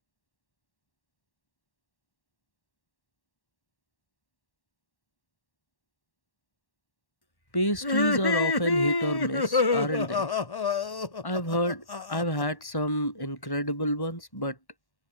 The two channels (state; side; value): late; right; 1.1 ms